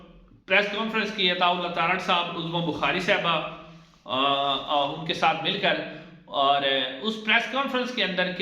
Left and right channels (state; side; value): identical; both; correlation 1.00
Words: کانفرنس کی، عطاء اللہ تارڑ صاحب، عظما بخاری صاحبہ ان کے ساتھ مل کر، اور اس پریس کانفرنس کے اندر